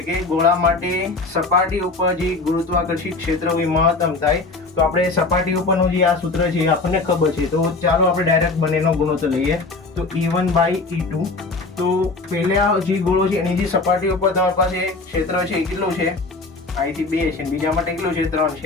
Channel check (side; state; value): right; quieter; 3.6 dB